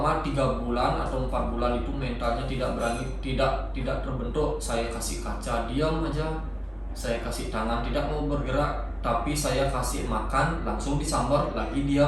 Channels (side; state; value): both; identical; correlation 1.00